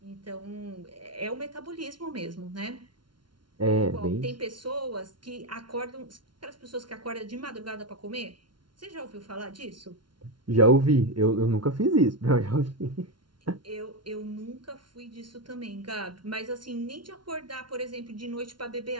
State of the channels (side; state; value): left; late; 0.72 ms